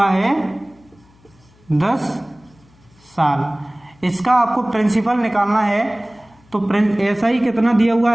है 10 साल। इसका आपको प्रिंसिपल निकालना है। तो SI कितना दिया हुआ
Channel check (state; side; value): noise; left; hum, 30 dB below the sound